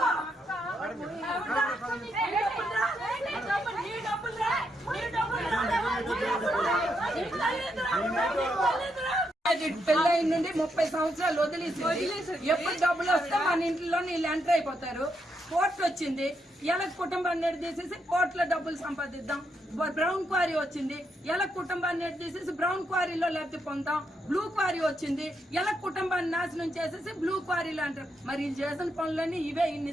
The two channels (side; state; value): both; normal; correlation 0.80